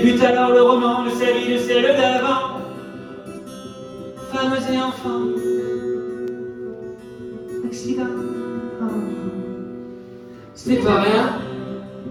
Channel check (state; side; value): identical; both; correlation 1.00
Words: alors le roman de sa vie, de celle d'avant. Femmes et enfants, accidents. Ce n'est pas rien,